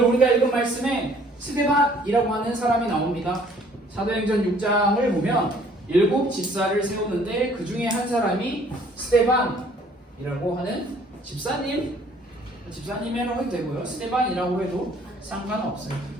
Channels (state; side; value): normal; both; correlation 0.58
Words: 우리가 읽은 말씀에 스데반이라고 하는 사람이 나옵니다. 사도행전 6장을 보면 7 집사를 세우는데 그 중에 한 사람이 스데반이라고 하는 집사님이라고 해도 되고요. 스데반이라고 해도 상관없어요.